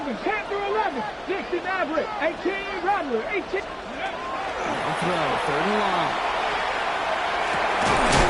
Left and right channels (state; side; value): identical; both; correlation 1.00